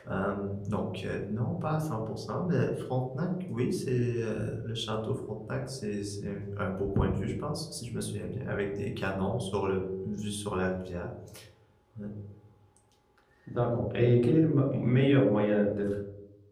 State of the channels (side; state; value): both; identical; correlation 1.00